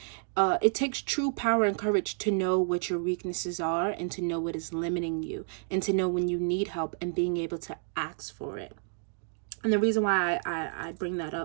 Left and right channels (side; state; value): left; silent; 58 dB below the other